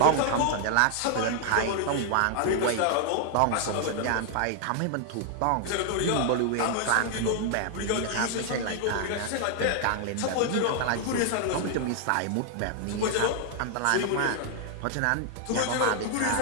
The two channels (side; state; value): both; different; correlation 0.00